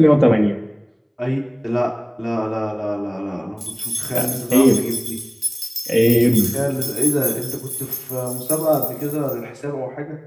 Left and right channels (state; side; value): identical; both; correlation 1.00